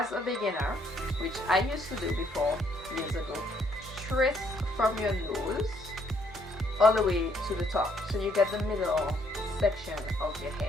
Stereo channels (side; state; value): both; normal; correlation 0.69